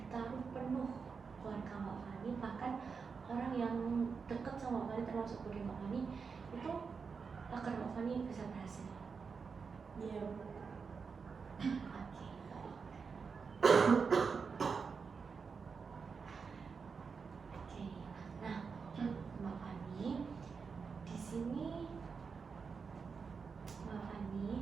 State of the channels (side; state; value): left; quieter; 5.4 dB